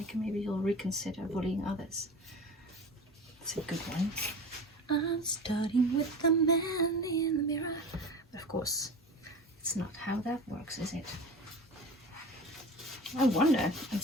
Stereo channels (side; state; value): both; normal; correlation 0.34